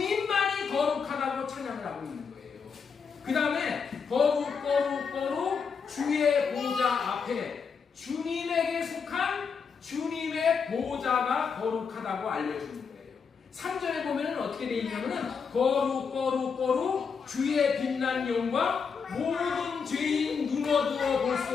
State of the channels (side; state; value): right; quieter; 5.9 dB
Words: 거룩하다고 찬양을 하고 있는 거예요. 그 다음에 거룩 거룩 거룩 주의 보좌 앞에 주님에게 속한 주님의 보좌가 거룩하다고 알려주는 거예요. 3절에 보면 어떻게 되어 있냐면은 거룩 거룩 거룩 주의 빛난 영광 모든 죄인 눈어두어 볼